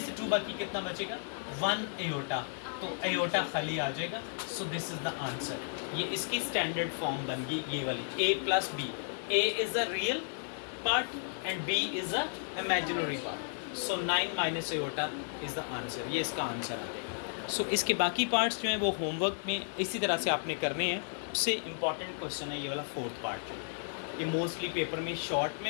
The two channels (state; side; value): silent; right; 55 dB below the other